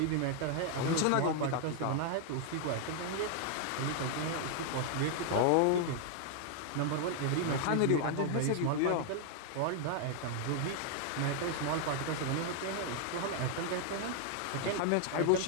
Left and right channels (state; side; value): different; both; correlation 0.00